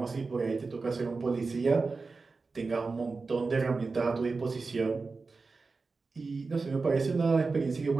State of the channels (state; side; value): quieter; left; 4.1 dB